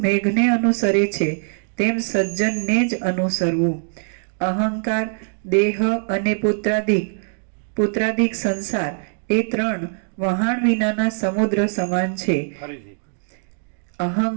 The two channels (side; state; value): left; silent; digital silence